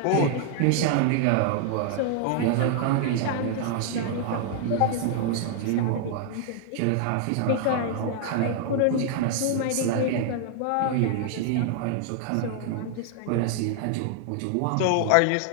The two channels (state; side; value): different; both; correlation 0.00